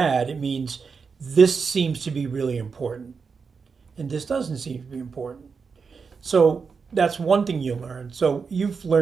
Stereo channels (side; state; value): left; quieter; 5.4 dB